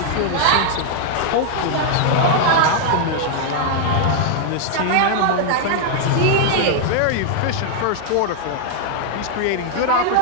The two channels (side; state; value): both; different; correlation 0.00